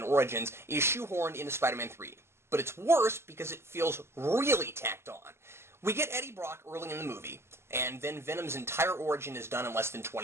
Origins, is shoehorned into Spider-Man 3. But it's worse because it feels really tacked on. We get Eddie Brock early in the movie, and then Venom's entire origin is done in less than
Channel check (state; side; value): late; left; 0.12 ms